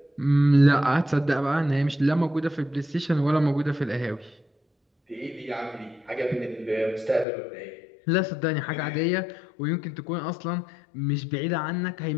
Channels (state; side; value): drops out; right; at 7.2 s